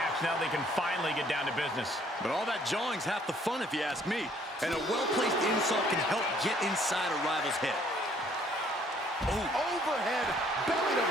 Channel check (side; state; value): both; normal; correlation 0.62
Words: Now they can finally get down to business. But all that jawing's half the fun if you ask me. And a well-placed insult can help get inside a rival's head. Oh. Overhead, belly to